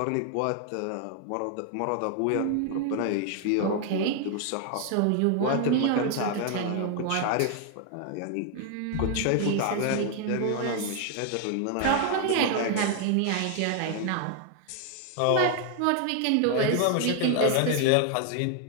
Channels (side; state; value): both; different; correlation 0.00